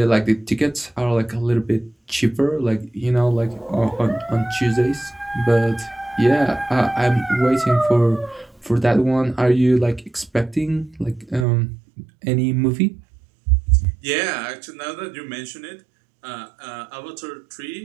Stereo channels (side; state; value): left; drops out; at 11.5 s